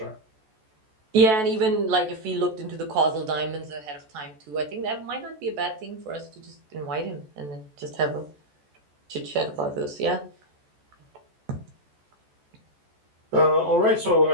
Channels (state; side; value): late; left; 14 ms